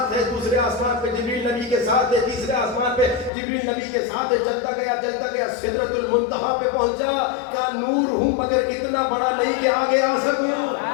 ہے، دوسرے آسمان پہ جبریل نبی کے ساتھ ہے، تیسرے آسمان پہ جبریل نبی کے ساتھ ہے، چلتا گیا سدرۃ المنتہا پہ پہنچا، کہا نور ہوں مگر اتنا بڑا نہیں کہ آگے آ سکوں۔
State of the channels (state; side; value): drops out; right; at 3.3 s